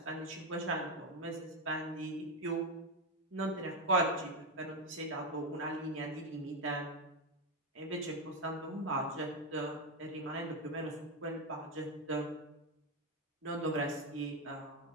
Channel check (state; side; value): normal; both; correlation 0.08